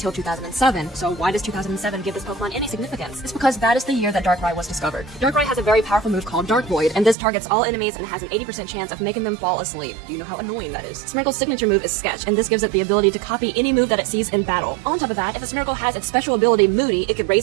2007, so why does 2007 give this Pokemon any significance? It's because that is the year that Darkrai was discovered. Darkrai has a very powerful move called Dark Void, and this targets all enemies and has an 80% chance of making them fall asleep. Do you know how annoying that is? Smeargle's signature move is Sketch, and this gives it the ability to copy any move that it sees in battle. On top of that, if a Smeargle has its special ability Moody, it could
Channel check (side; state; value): left; drops out; at 7.2 s